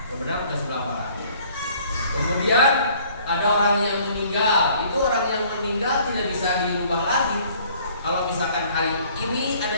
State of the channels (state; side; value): inverted; both; correlation -0.57